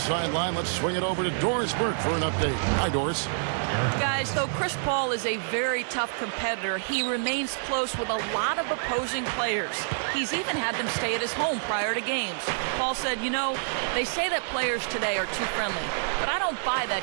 let's swing it over to Doris Burke for an update. Hi, Doris. Guys, though Chris Paul is a very tough competitor, he remains close with a lot of opposing players. He's even had them stay at his home prior to games. Paul said, they say that players today are too friendly, but I don't buy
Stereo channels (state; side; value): silent; left; digital silence